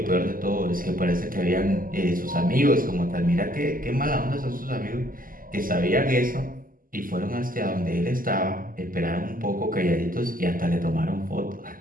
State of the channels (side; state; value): left; late; 0.41 ms